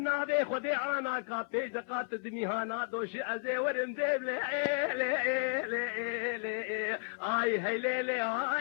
بي خدي عانا كابي زقات دميهانا دوشي ازي ورم ديب لي اي هي لي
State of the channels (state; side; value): silent; right; 56 dB below the other